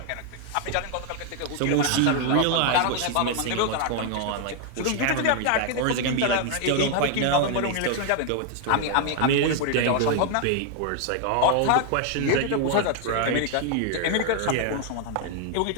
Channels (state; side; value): different; both; correlation 0.00